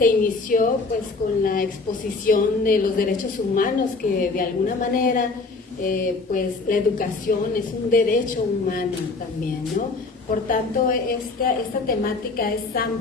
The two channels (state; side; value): quieter; right; 3.8 dB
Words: inició pues con la exposición de los derechos humanos, que de alguna manera pues la educación es un derecho humano también, ¿no? Por tanto, esta temática es